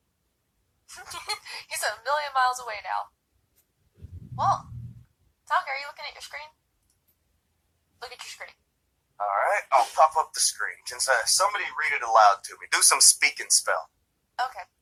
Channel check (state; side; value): identical; both; correlation 1.00